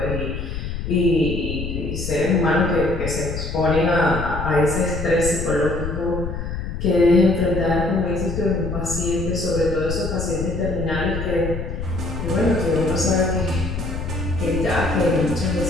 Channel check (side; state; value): left; noise; rumble, 5 dB below the sound